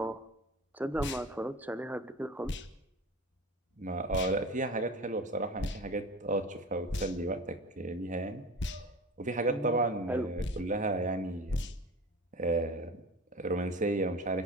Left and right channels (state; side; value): normal; both; correlation 0.34